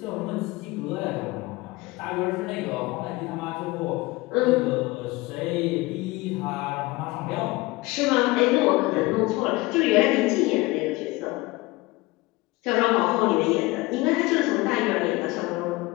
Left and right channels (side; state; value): right; quieter; 21.6 dB